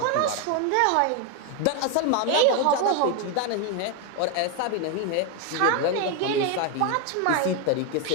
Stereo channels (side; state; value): both; different; correlation 0.01